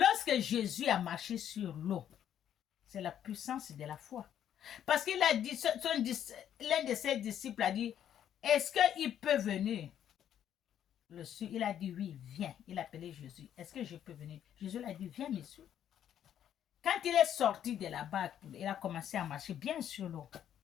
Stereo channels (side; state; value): right; quieter; 10.1 dB